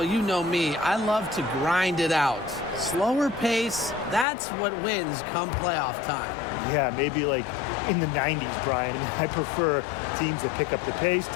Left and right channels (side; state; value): right; drops out; at 4.2 s